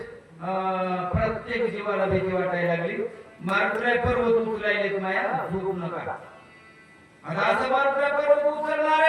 प्रत्येक जीवाला भीती वाटायला लागली. मारुत्र्या पर्वत उचलायले माया झोपू नका. आता असं मारुत्र्या पर्वत उचलणार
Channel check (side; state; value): both; identical; correlation 1.00